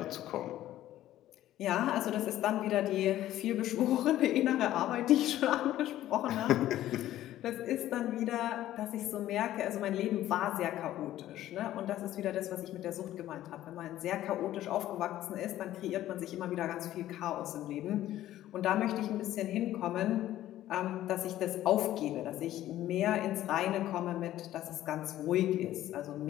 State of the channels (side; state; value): right; quieter; 13.6 dB